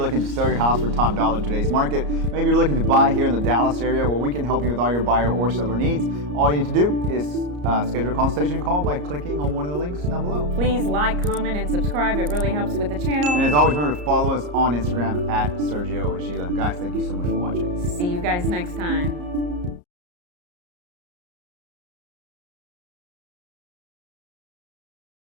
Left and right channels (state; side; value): late; left; 34 ms